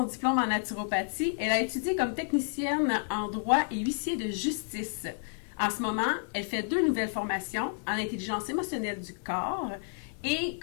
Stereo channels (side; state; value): right; silent; 57 dB below the other